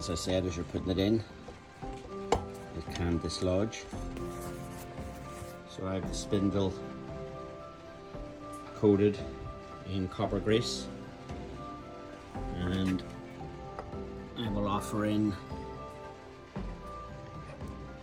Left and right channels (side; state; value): both; identical; correlation 1.00